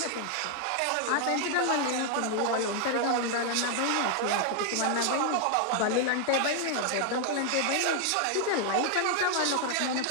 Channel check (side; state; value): both; different; correlation 0.00